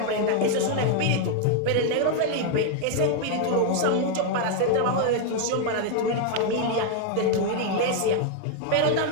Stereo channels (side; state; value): both; different; correlation 0.00